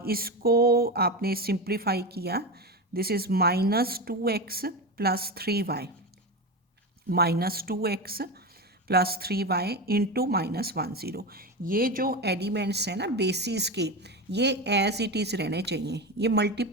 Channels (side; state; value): both; normal; correlation 0.20